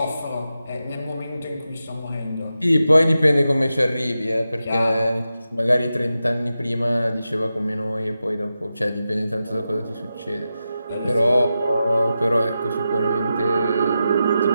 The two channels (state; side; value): inverted; both; correlation -0.90